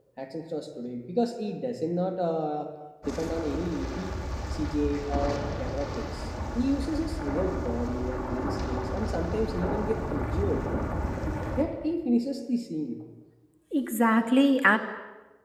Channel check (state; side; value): identical; both; correlation 1.00